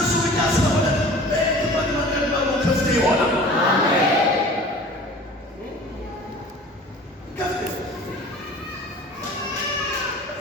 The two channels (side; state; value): both; normal; correlation 0.44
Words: እሱ ብቻ ስለሆነ በሄድክበት መንገድ በሙሉ ክፍት ይሆናል።